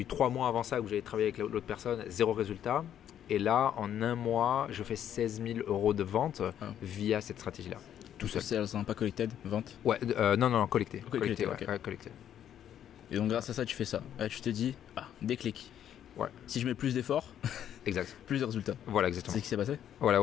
3 mois avant ça où j'avais travaillé avec l'autre personne, 0 résultat. Et là, en 1 mois, je fais 16 000 € de vente via cette stratégie-là. Tout seul. C'est pas collected, vente? Ouais, non, collecté. Collecté. Collecté. Et donc grâce à ça, tu fais ça. Là, tu te dis, déclic. Ouais. Si je mets plus d'efforts, exact. plus de résultats. Voilà, exactement. C'est ce qui s'est passé? Voilà,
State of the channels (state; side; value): quieter; right; 10.1 dB